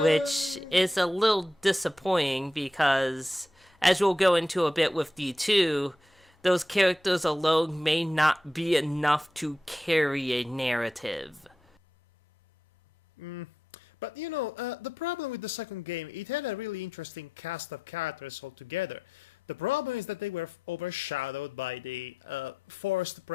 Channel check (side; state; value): both; normal; correlation 0.86